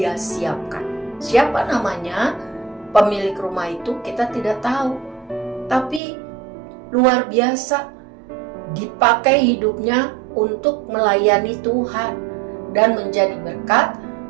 siapkan. Siapa namanya pemilik rumah itu kita tidak tahu. Tapi luar biasa, dipakai hidupnya untuk melayani Tuhan dan menjadi berkat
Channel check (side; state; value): left; drops out; at 6.0 s